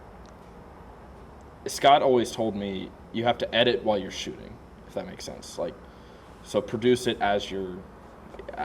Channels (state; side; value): identical; both; correlation 1.00